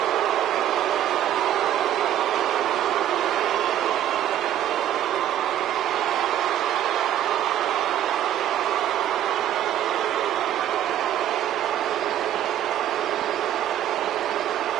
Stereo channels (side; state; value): left; quieter; 11.5 dB